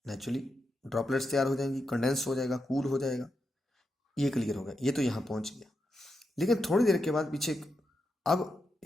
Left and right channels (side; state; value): both; normal; correlation 0.86